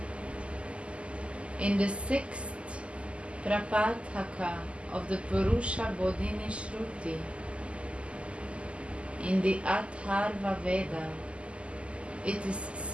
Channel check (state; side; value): late; left; 0.055 ms